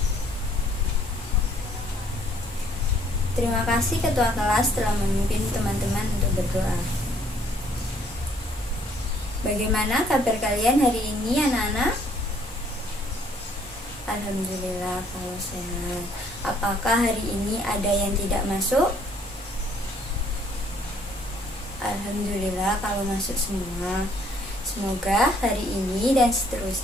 Terima kasih ketua kelas telah memimpin teman-teman untuk berdoa. Bagaimana kabar kalian hari ini anak-anak? Alhamdulillah kalau sehat. Apakah hari ini ada yang tidak masuk? Alhamdulillah kalau masuk semua. Semoga hari ini dan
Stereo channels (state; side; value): normal; both; correlation 0.63